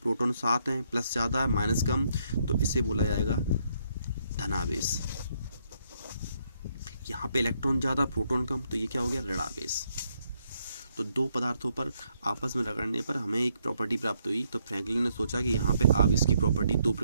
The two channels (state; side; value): inverted; both; correlation -0.73